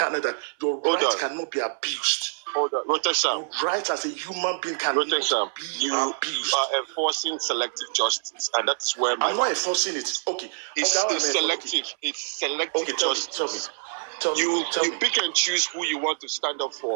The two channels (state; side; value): silent; left; 61 dB below the other